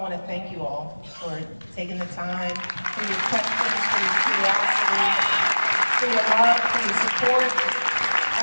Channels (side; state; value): both; inverted; correlation -1.00